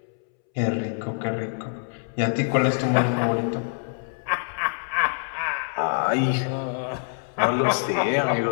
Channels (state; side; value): silent; right; 62 dB below the other